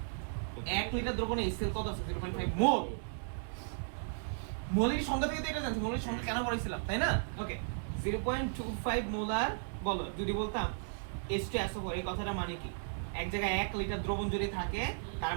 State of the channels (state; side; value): silent; left; digital silence